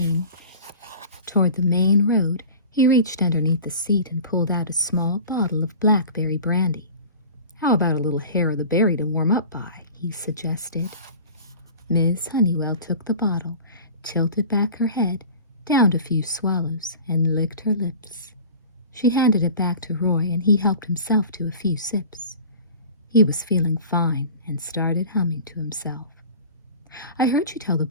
toward the main road, he reached underneath the seat and pulled out a small bottle of blackberry brandy. How about a little hair of the berry to warm up by, he suggested. Miss Honeywell took the bottle, tilted back her head, downed a few swallows, and licked her lips. She handed it back to Roy, and he helped himself to a few sips. He was feeling fine and started humming to himself. I heard you tell the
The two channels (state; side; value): inverted; both; correlation -0.39